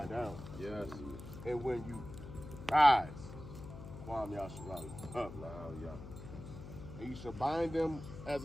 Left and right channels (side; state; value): left; noise; hum, 12 dB below the sound